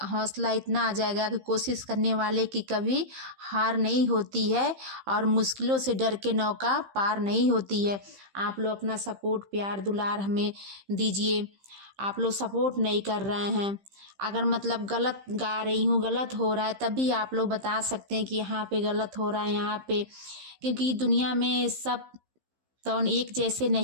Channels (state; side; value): late; left; 15 ms